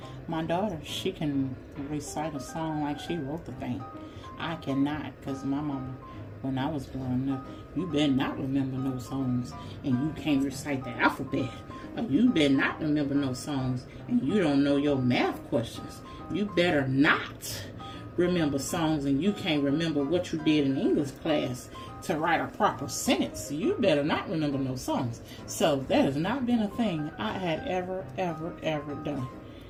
My daughter, she can recite a song like she wrote the thing. I cannot, because my mama, when I was growing up, you better not remember no songs and you can't recite the alphabet. Or you better not remember no songs and you don't know your math questions. You better not remember songs and you can't remember what you did in English class to write a proper sentence. You better not remember no songs. So that has not been a thing I had ever done.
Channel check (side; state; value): both; identical; correlation 1.00